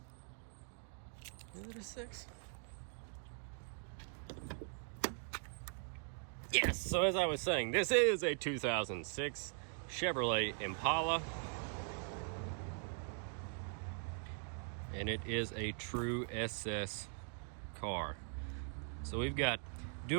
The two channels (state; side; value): silent; left; 50 dB below the other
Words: Is it a 6? Yes, so as I was saying, this is a 2006 Chevrolet Impala. And it is a true SS car. So we've got